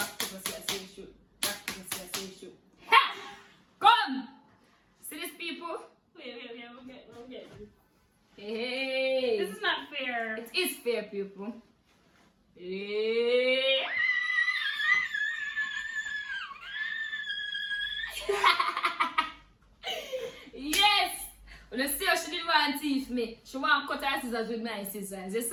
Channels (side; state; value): both; identical; correlation 1.00